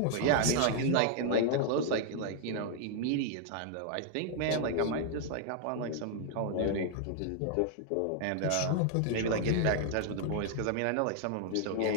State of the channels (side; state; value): both; different; correlation 0.00